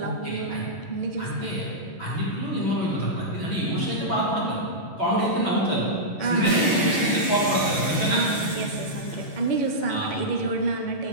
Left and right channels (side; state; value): right; late; 11 ms